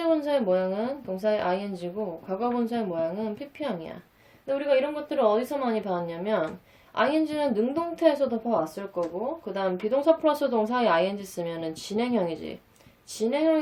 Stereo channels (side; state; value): both; identical; correlation 1.00